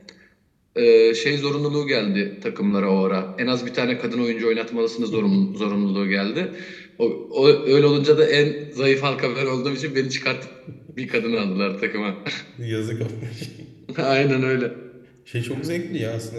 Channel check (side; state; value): both; identical; correlation 1.00